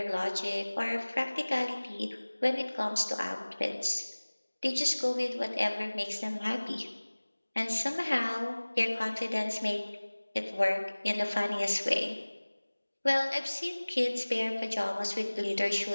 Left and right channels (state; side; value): inverted; both; correlation -1.00